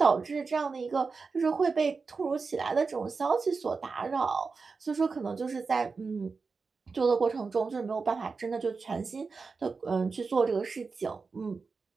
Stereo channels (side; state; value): left; quieter; 4.6 dB